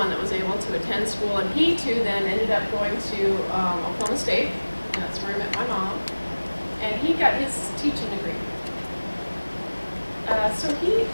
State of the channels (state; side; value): inverted; both; correlation -1.00